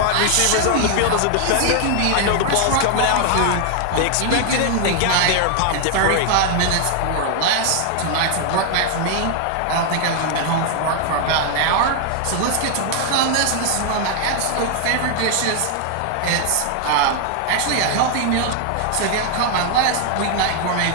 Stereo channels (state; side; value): different; both; correlation 0.00